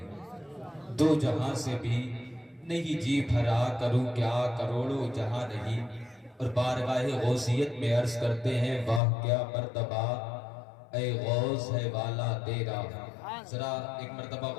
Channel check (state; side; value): drops out; right; at 9.0 s